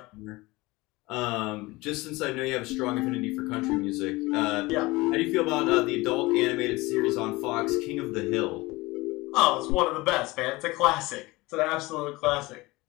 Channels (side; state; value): right; quieter; 21.7 dB